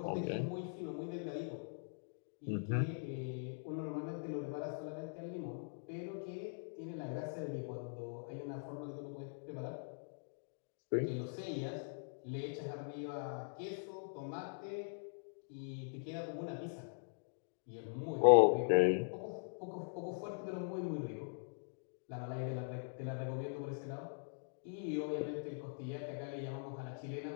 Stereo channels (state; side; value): silent; right; digital silence